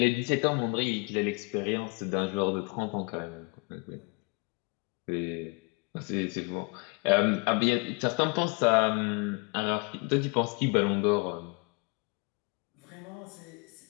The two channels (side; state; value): right; quieter; 31.8 dB